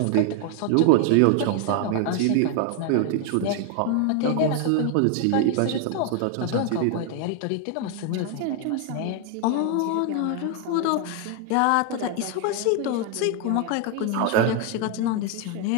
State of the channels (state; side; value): different; both; correlation 0.00